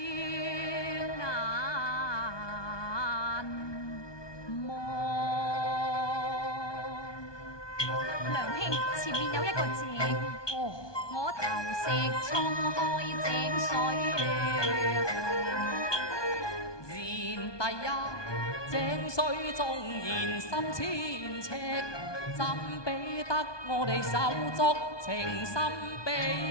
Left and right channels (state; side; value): late; right; 1.2 ms